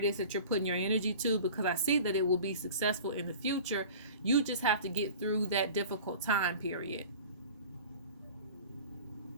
is that you're putting your energy to, because I see that it will be successful in the future. You just have to get through that difficult time period.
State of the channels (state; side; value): inverted; both; correlation -0.40